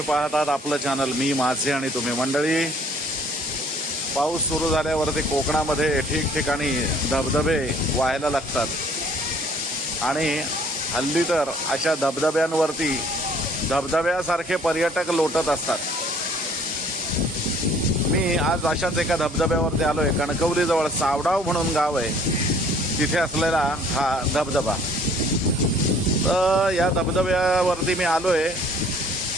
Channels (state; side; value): normal; both; correlation 0.57